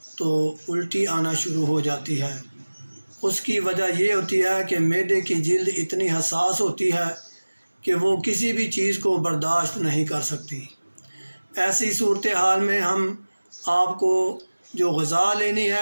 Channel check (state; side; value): inverted; both; correlation -1.00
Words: تو الٹی آنا شروع ہو جاتی ہے۔ اس کی وجہ یہ ہوتی ہے کہ معدے کی جلد اتنی حساس ہوتی ہے کہ وہ کسی بھی چیز کو برداشت نہیں کر سکتی۔ ایسی صورتحال میں ہم آپ کو جو غذا لینی